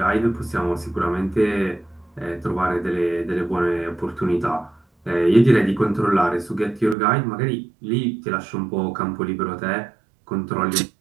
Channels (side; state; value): left; drops out; at 7.0 s